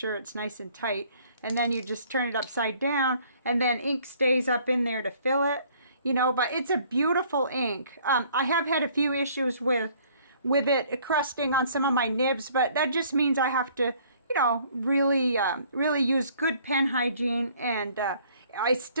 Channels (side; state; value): both; inverted; correlation -0.59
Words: it's nice and tight, and then you just turn it upside down, and then ink stays up in there to fill it, you know. But it's a beautiful ink. I have had a few issues with it crusting on some of my nibs, but that just means I have to, you know, really use good pen hygiene, and it